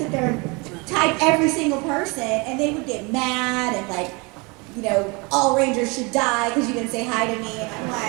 there and type every single person, and they would get mad and like, you know, all Rangers should die because you didn't say hi to me, and I'm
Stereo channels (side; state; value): left; quieter; 28.4 dB